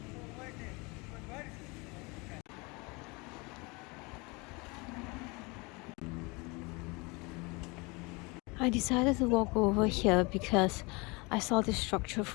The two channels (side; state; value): right; quieter; 27.1 dB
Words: I decided to walk over here because I saw this structure